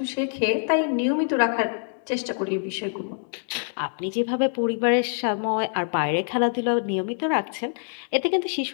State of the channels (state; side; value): silent; right; digital silence